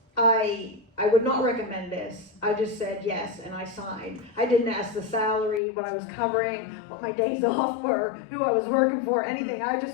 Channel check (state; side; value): drops out; right; at 5.6 s